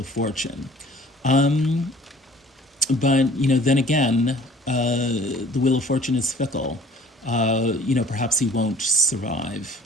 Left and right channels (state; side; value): normal; both; correlation 0.52